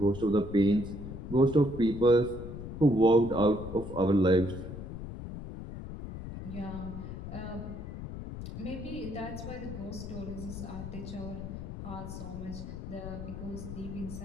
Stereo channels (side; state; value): left; noise; rumble, 9 dB below the sound